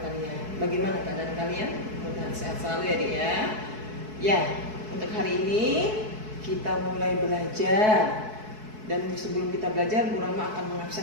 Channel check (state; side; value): late; left; 4.6 ms